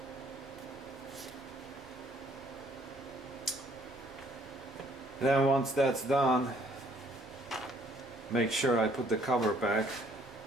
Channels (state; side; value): normal; both; correlation 0.63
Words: And then once that's done, make sure I put the cover back